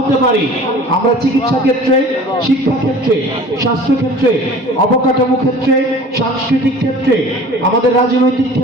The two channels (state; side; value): normal; both; correlation 0.44